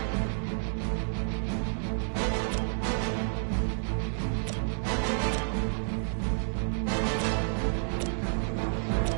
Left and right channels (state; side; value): silent; left; 58 dB below the other